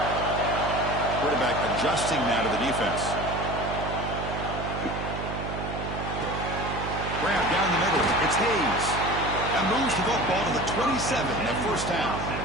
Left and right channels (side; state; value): right; noise; hum, 6 dB below the sound